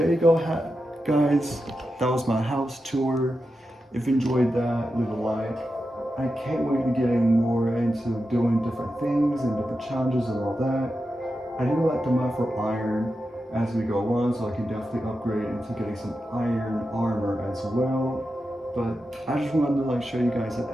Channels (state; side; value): normal; both; correlation 0.90